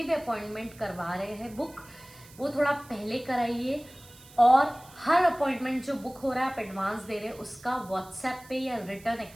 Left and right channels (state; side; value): noise; right; hiss, 22 dB below the sound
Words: भी अपॉइंटमेंट करवा रहे हैं बुक, वो थोड़ा पहले कराइए। और हर अपॉइंटमेंट जो बुक हो रहा है आप एडवांस दे रहे हैं उसका व्हाट्सएप पे या रिटर्न